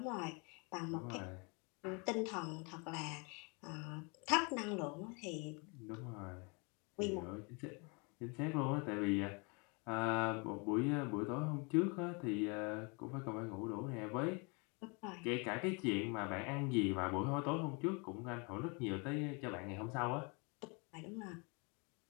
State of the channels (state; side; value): quieter; right; 31.7 dB